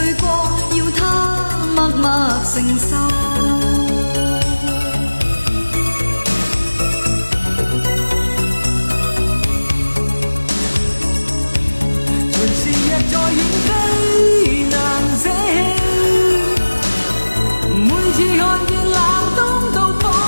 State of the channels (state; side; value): inverted; both; correlation -1.00